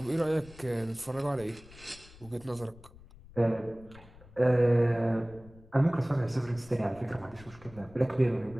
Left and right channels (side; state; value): left; noise; rumble, 21 dB below the sound